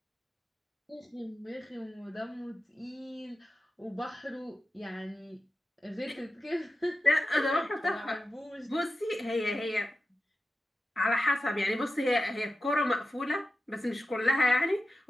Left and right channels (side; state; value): both; normal; correlation 0.92